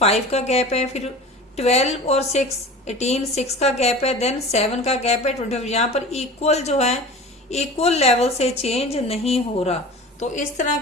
का गैप है, फिर 12 और 6, 18, 6 का गैप है, देन 7 का गैप है, 25। यहाँ पर इक्वल जो है, इक्वल लेवल से चेंज नहीं हो रहा, तो इस तरह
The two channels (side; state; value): both; normal; correlation 0.37